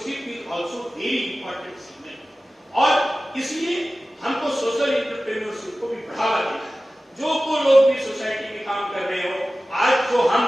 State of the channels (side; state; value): both; normal; correlation 0.96